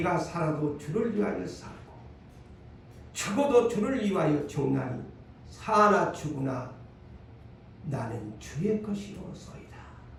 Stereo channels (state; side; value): identical; both; correlation 1.00